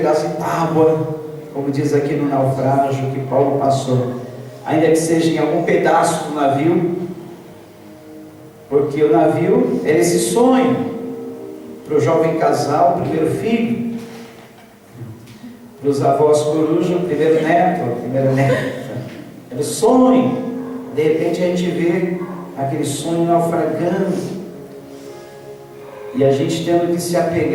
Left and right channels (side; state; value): both; identical; correlation 1.00